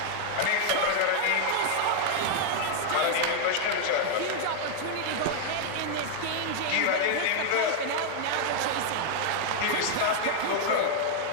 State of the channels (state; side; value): different; both; correlation 0.00